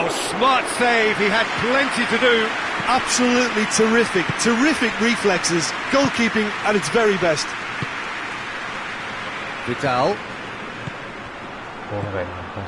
smart save. He had plenty to do. Absolutely terrific, terrific reflexes, goalkeeping at its very best. Vidal. Porra, velho, não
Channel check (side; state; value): both; identical; correlation 1.00